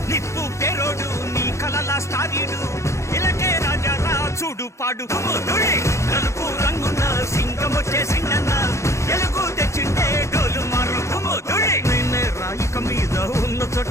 నిప్పు పేరోడు నీ కలలా స్టారీడు ఇలకే రాజా రా చూడు పాడు నలుపు రంగున్న సింగం వచ్చేసిండన్న ఎలుగు తెచ్చిండే డోలు మారు నిన్నే రాయిక మీద ఉన్న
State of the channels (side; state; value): right; late; 0.14 ms